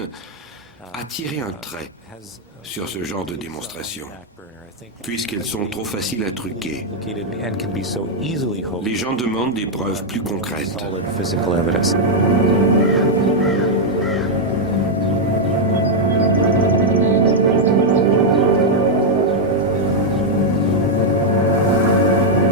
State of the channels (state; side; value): normal; both; correlation -0.01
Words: a tiré un trait sur ce genre de démonstration, puisqu'elles sont trop faciles à truquer. Les gens demandent des preuves plus concrètes.